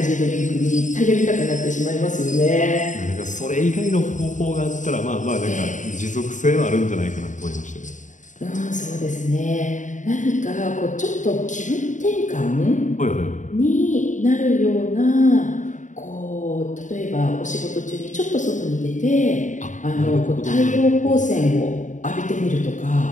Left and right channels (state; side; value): late; right; 0.36 ms